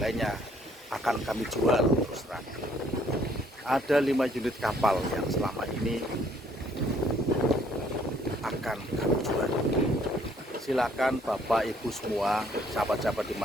akan kami jual terus terang. Ada 5 unit kapal yang selama ini akan kami jual. Silakan Bapak Ibu semua, sahabat-sahabat di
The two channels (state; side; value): normal; both; correlation 0.64